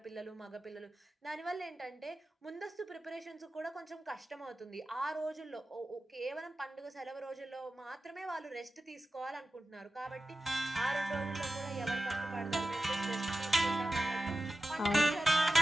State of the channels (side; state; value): both; normal; correlation 0.94